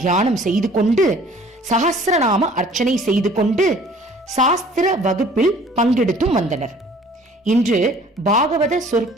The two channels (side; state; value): both; normal; correlation 0.52